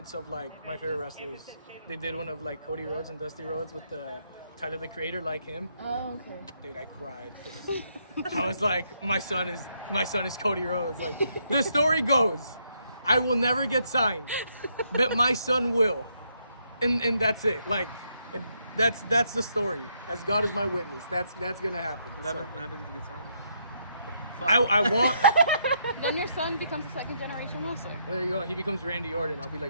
of like my favorite wrestlers. They did one of like Cody Rhodes and Dusty Rhodes with Tyler the Creator, like him. Oh, okay. Dude, I cried. I was like, my son is Cody Rhodes. Like, the story goes, I will never get signed, but my son will, and that's it. Like, and that's the story. As God is my witness, that's gonna happen. What happens if you get signed? I want. Then your son becomes a second generation wrestler. There you go. He becomes Randy Orton. I'll be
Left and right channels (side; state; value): both; inverted; correlation -0.75